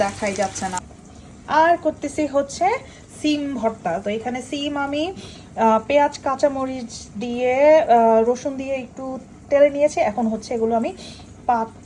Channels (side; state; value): both; identical; correlation 1.00